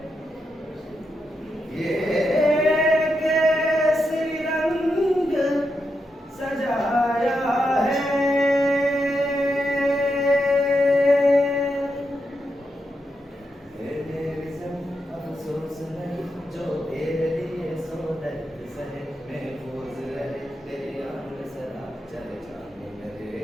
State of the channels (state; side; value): normal; both; correlation 0.84